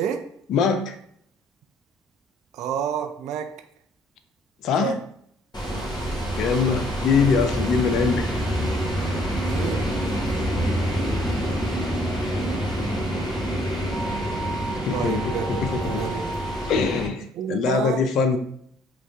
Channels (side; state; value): both; normal; correlation 0.62